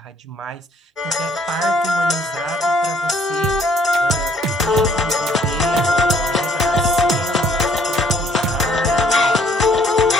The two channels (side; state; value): both; normal; correlation 0.63